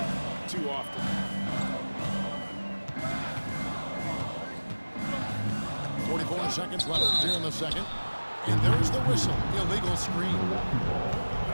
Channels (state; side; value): inverted; both; correlation -1.00